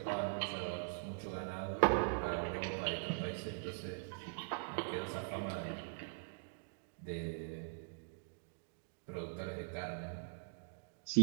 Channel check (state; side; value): silent; left; digital silence